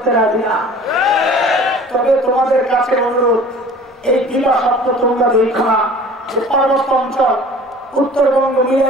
রাজি না। তবে তোমাদের কাছে অনুরোধ, এই দিবা সত্য তোমরা দেখো না যে পার্বত্য অঞ্চল উত্তরবঙ্গ মিলে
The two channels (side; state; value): both; normal; correlation 0.46